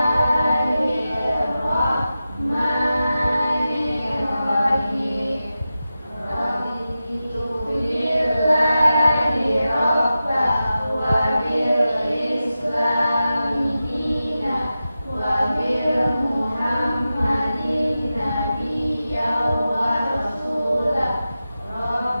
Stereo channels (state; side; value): inverted; both; correlation -0.93